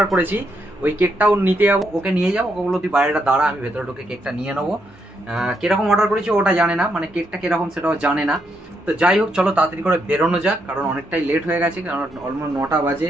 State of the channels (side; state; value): both; normal; correlation 0.78